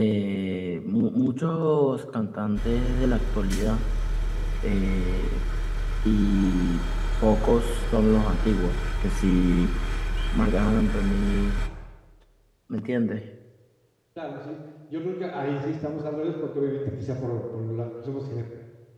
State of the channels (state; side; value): identical; both; correlation 1.00